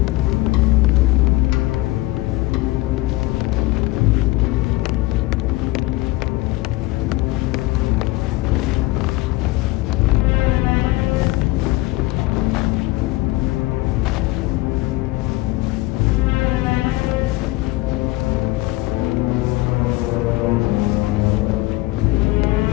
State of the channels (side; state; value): right; quieter; 19.7 dB